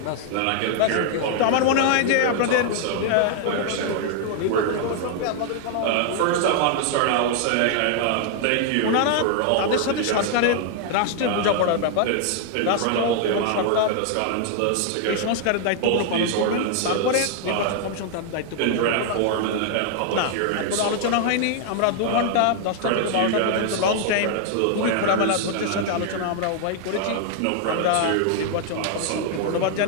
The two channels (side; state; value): both; different; correlation 0.00